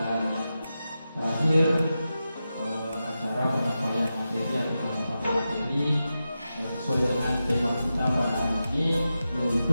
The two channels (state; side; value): inverted; both; correlation -0.91